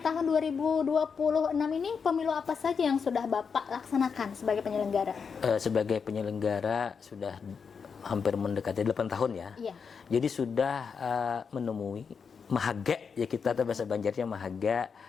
tahun 2026 ini pemilu apa saja yang sudah Bapak laksanakan sebagai penyelenggara? Sebagai penyelenggara sudah hampir mendekati 8 tahun ya. Iya. Jadi sudah menemui mahaga, ya kita bahasa Banjarnya mahaga,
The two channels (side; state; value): right; quieter; 6.0 dB